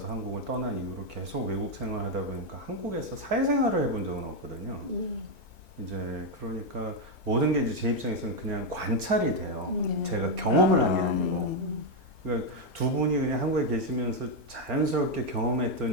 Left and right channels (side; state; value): left; late; 2.2 ms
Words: 한국을 떠난 이후로 계속 외국 생활하다 보니까 한국에서 사회생활을 해본 적은 없거든요. 이제 그러니까 모든 게 이제 제 입장에서는 그냥 관찰이 돼요. 제가 경험을 한 게 아니고. 그러니까 두 분이 그냥 한국에 계시면서 자연스럽게